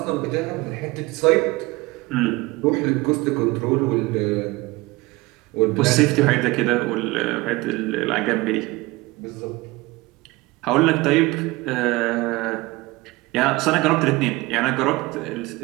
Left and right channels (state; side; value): quieter; left; 21.9 dB